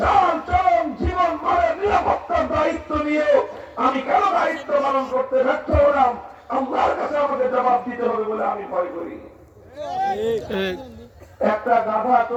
চলন জীবন মানের নিরাপত্তার দায়িত্ব নিয়ে আমি কেন দায়িত্ব পালন করতে ব্যর্থ হলাম, আল্লাহর কাছে আমাকে জবাব দিতে হবে বলে আমি ভয় করি। একটা গাধা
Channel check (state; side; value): identical; both; correlation 1.00